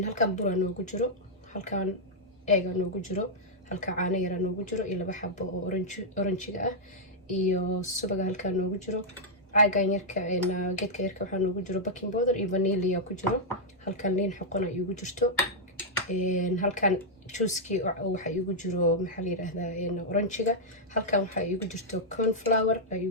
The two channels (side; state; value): both; normal; correlation -0.05